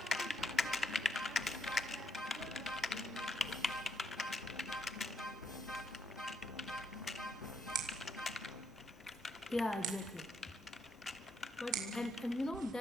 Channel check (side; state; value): both; normal; correlation 0.76